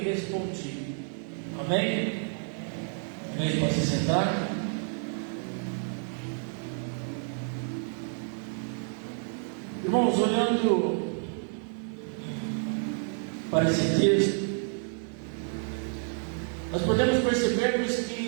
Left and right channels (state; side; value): silent; left; 58 dB below the other